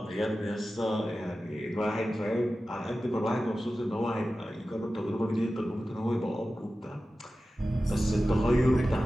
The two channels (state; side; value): normal; both; correlation 0.94